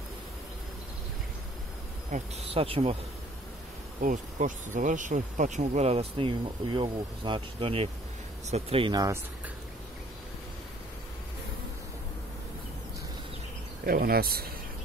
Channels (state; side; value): normal; both; correlation 0.57